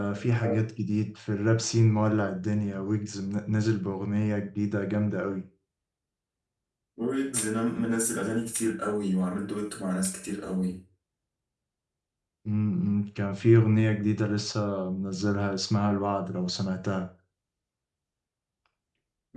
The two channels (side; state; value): both; identical; correlation 1.00